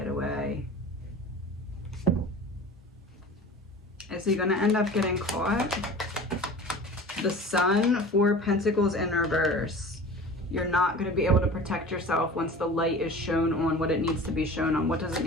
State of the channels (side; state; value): both; normal; correlation 0.39